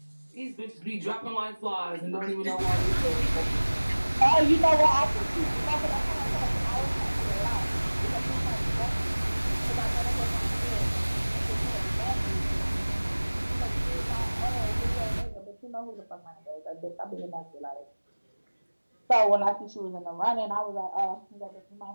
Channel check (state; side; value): inverted; both; correlation -1.00